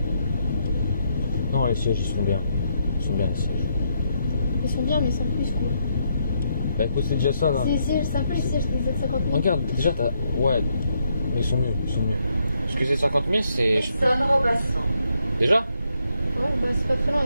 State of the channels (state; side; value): inverted; both; correlation -0.76